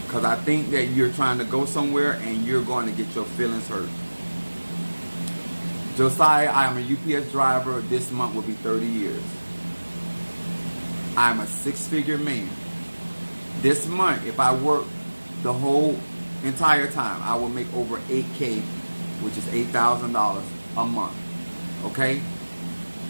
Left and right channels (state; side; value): inverted; both; correlation -1.00